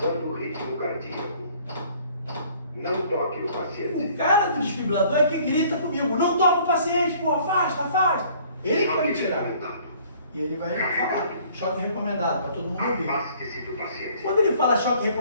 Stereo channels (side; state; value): both; inverted; correlation -0.56